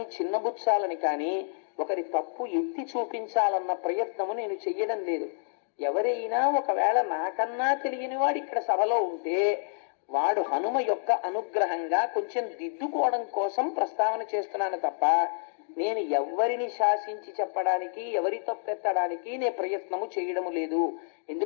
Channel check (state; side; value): silent; right; digital silence